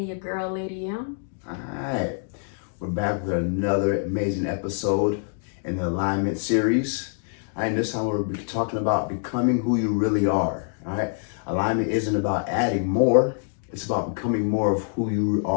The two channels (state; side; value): silent; right; digital silence